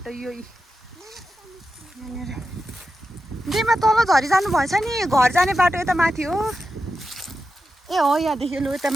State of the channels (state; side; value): normal; both; correlation 0.89